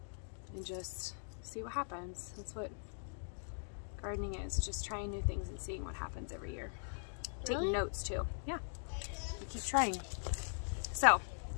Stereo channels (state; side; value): silent; right; digital silence